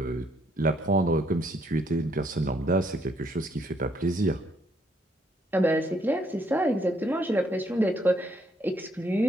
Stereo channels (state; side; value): normal; both; correlation 0.70